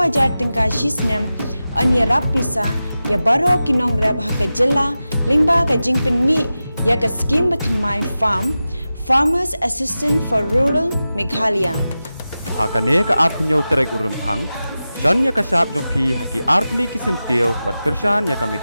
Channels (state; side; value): inverted; both; correlation -0.94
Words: jar tingka shisnem anya rap pisa ya baro kinong rap ha ka jilla lingba ka jingpen mi ya ka scheme batmai farm Farmers Assistant for Rural Meghalaya. Hakane ka apnyo trek urempang John ya ka sap jong pi haki artli kisentio bat kersan ya ka